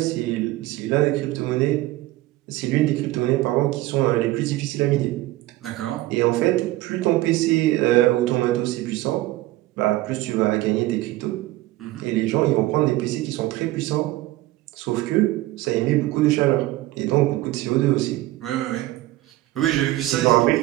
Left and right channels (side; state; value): left; quieter; 17.2 dB